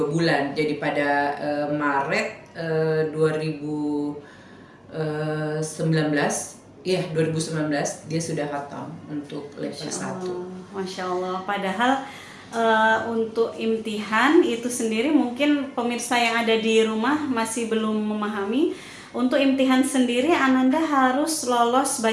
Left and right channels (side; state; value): both; identical; correlation 1.00